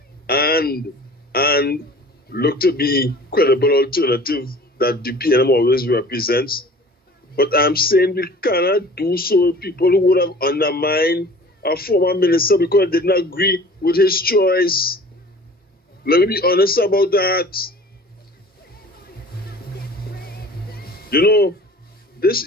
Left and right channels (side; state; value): both; normal; correlation 0.45